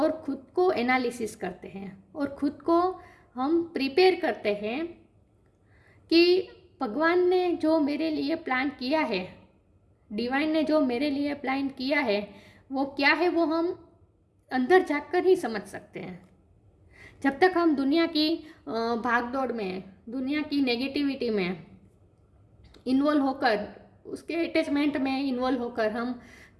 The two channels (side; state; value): both; identical; correlation 1.00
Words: खुद को एनालिसिस करते हैं और खुद को हम प्रिपेयर करते हैं कि भगवान ने जो मेरे लिए प्लान किया है, डिवाइन ने जो मेरे लिए प्लान किया है, वो क्या है, वो हम अंदर जाकर ही समझ सकते हैं। जब तक हम दुनिया की भागदौड़ में, दुनिया की नेगेटिविटी में इन्वॉल्व होकर, उसके अटैचमेंट में इन्वॉल्व होकर हम